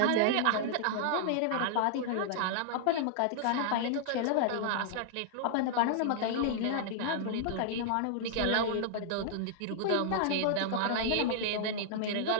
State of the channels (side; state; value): both; different; correlation -0.01